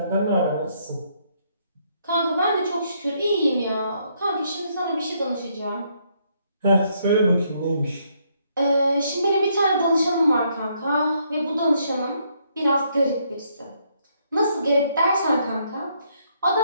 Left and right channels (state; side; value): inverted; both; correlation -0.72